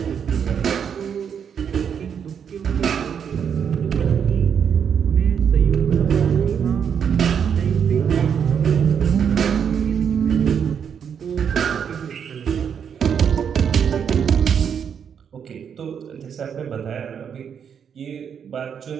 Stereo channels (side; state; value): left; quieter; 7.6 dB